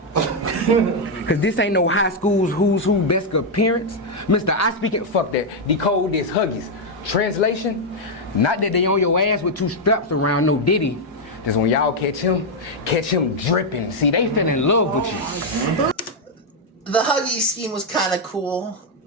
Cause this ain't no high school's who's who best appearance. Mr. I speaking, fuck that. Decode this, Huggies. Translation, not that they on your ass with 2 straps around no Diddy. Just when y'all catch him dripping. See, they fell in love with you. The Huggy scheme was kind of cool.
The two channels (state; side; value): normal; both; correlation 0.00